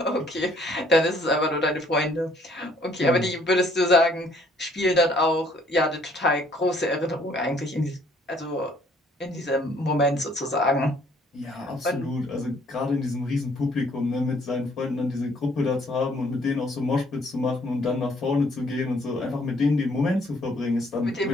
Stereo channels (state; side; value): normal; both; correlation 0.62